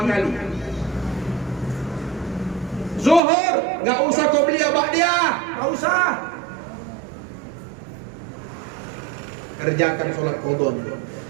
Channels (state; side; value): drops out; left; at 3.2 s